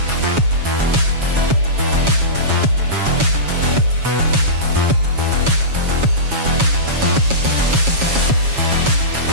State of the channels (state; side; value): late; left; 7.2 ms